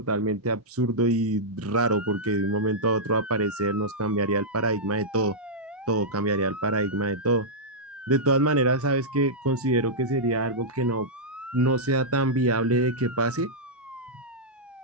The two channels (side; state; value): both; normal; correlation -0.09